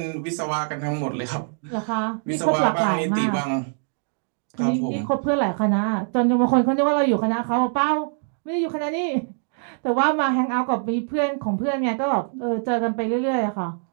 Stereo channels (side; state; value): left; silent; digital silence